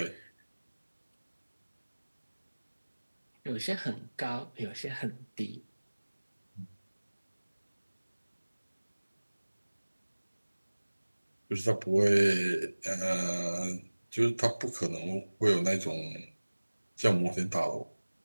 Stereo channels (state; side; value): inverted; both; correlation -1.00